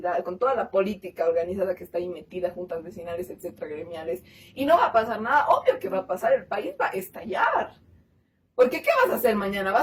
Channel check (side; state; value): both; identical; correlation 1.00